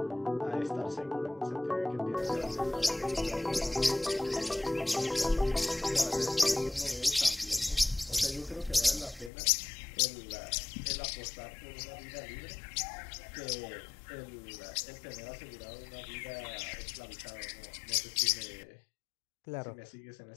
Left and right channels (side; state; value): right; drops out; at 9.3 s